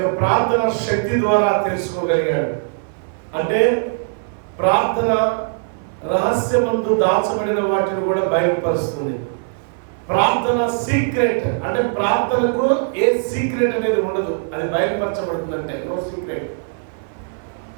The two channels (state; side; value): silent; left; 66 dB below the other